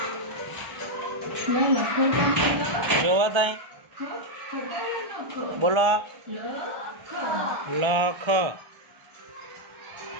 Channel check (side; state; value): left; late; 1.3 ms